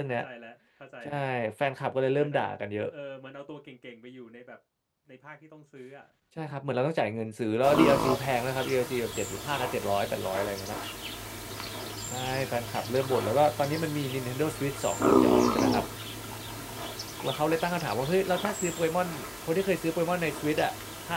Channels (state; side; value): identical; both; correlation 1.00